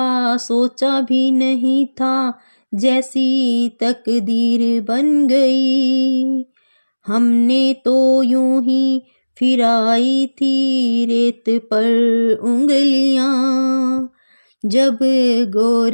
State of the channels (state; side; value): inverted; both; correlation -1.00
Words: सोचा भी नहीं था, जैसी तकदीर बन गई। हमने तो यूं ही फिराई थी रेत पर उंगलियां, जब